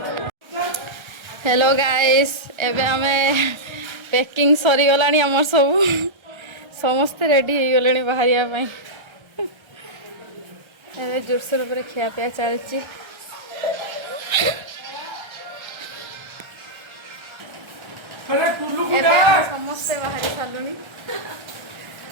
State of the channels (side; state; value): left; late; 1.3 ms